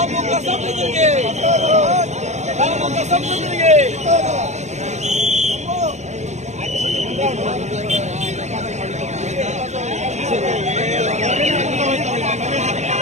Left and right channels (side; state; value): left; late; 0.33 ms